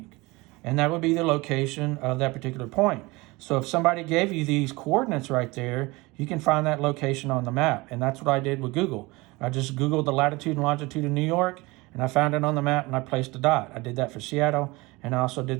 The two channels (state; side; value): quieter; left; 23.0 dB